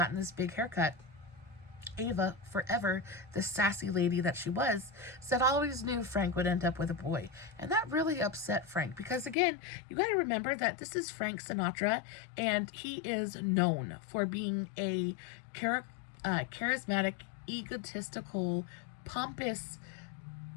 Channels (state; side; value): drops out; right; at 9.3 s